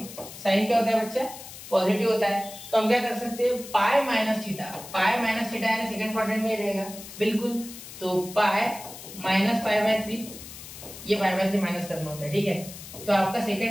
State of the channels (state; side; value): noise; left; hiss, 14 dB below the sound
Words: साइन क्या होता है बच्चा, पॉजिटिव होता है। तो हम क्या कर सकते हैं, pi minus theta, pi minus theta यानी सेकंड क्वाड्रेंट में रहेगा बिल्कुल। तो पाई माइनस पाई बाय 3, ये पाई बाय 3 माइनस करना होता है, ठीक है। तो आपका